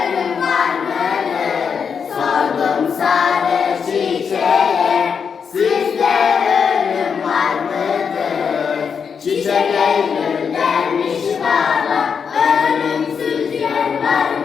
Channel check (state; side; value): quieter; right; 6.5 dB